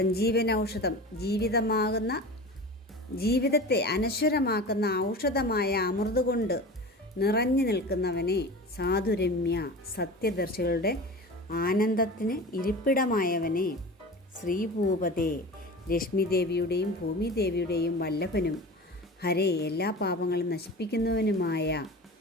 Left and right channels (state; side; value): normal; both; correlation 0.34